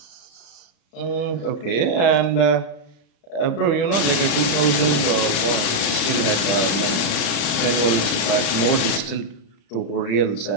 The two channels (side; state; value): right; late; 35 ms